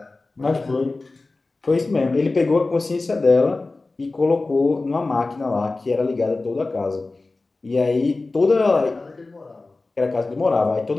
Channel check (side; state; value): right; quieter; 3.4 dB